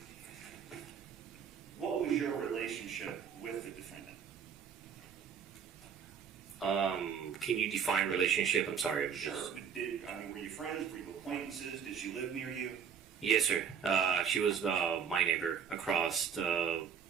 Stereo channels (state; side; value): quieter; left; 7.4 dB